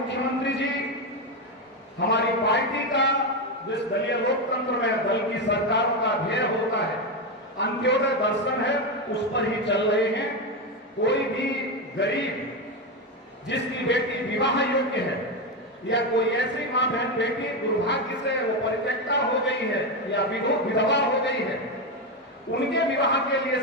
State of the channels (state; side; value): normal; both; correlation 0.11